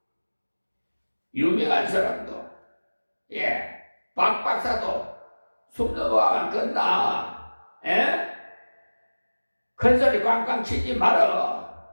유명한 사람도 박 박사도 숨 넘어가면 끝나. 에? 큰 소리 꽝꽝 치지 말어.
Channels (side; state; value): both; inverted; correlation -1.00